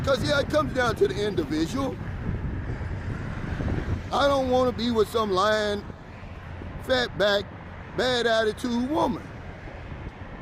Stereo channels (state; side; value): identical; both; correlation 1.00